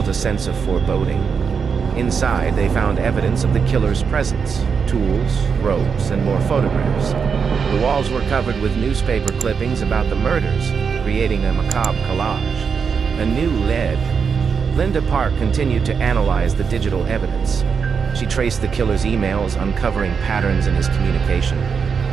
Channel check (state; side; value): quieter; left; 6.1 dB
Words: a sense of foreboding. Inside, they found evidence of the killer's presence: tools, ropes, and more photographs. The walls were covered with newspaper clippings about the murders, creating a macabre collage. A new lead. Linda Park continued to analyze the digital evidence. She traced the killer's emails, uncovering patterns in his communication.